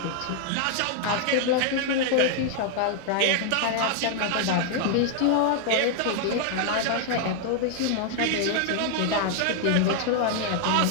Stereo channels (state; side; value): different; both; correlation 0.00